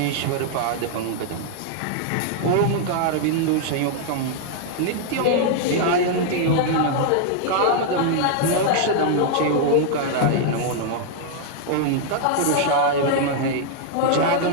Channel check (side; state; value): both; different; correlation 0.00